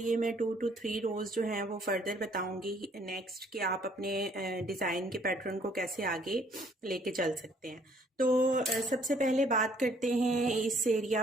मैं 2 to 3 रोज़ जो हैं वो फर्दर बताऊंगी नेक्स्ट कि आप अपने डिज़ाइन के पैटर्न को कैसे आगे लेके चल सकते हैं। तो सबसे पहले बात करते हैं इस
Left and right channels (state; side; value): normal; both; correlation 0.62